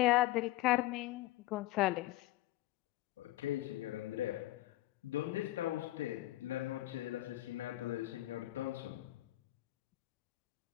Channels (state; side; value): quieter; right; 16.9 dB